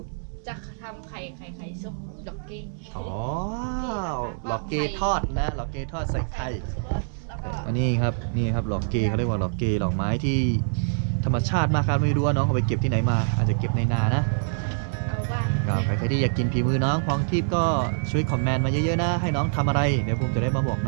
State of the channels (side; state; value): left; silent; digital silence